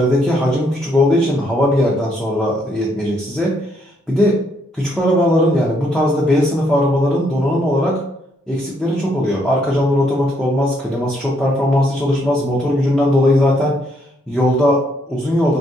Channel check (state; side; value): normal; both; correlation 0.72